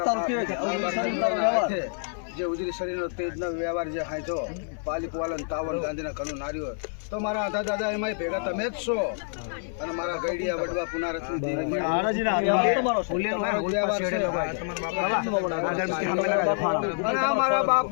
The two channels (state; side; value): silent; right; 60 dB below the other